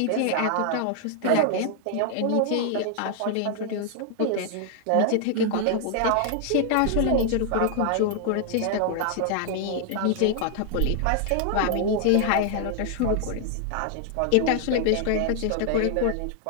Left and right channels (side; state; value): both; different; correlation 0.00